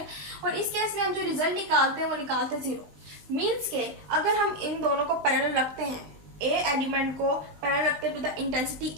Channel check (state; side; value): late; left; 20 ms